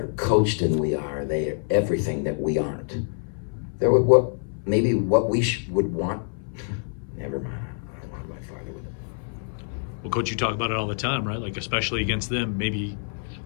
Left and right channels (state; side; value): silent; right; 60 dB below the other